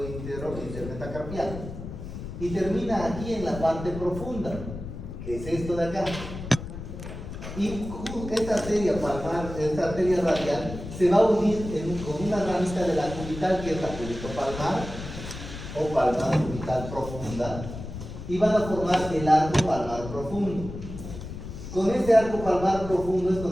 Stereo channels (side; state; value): left; noise; rumble, 10 dB below the sound